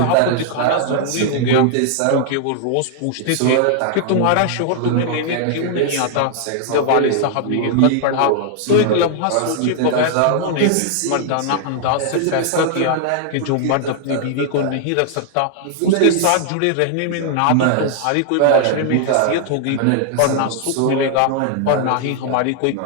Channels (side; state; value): both; different; correlation -0.01